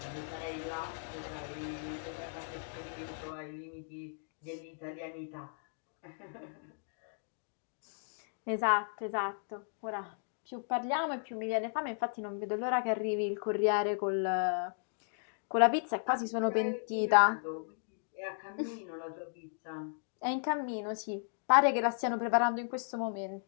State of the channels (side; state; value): right; silent; digital silence